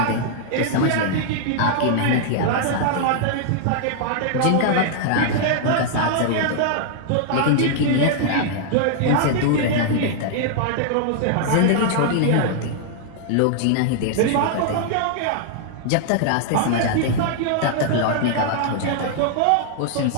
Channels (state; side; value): different; both; correlation -0.01